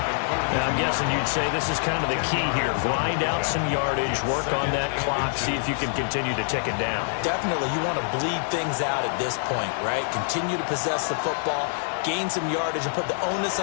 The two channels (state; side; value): silent; right; digital silence